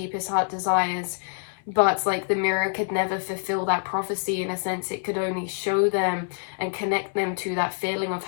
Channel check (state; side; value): silent; right; 61 dB below the other